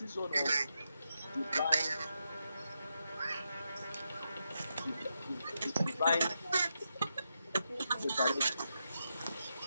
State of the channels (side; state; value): both; inverted; correlation -0.85